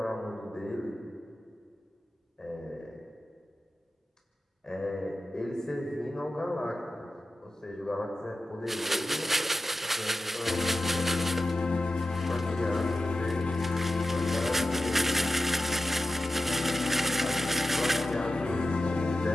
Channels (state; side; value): normal; both; correlation 0.92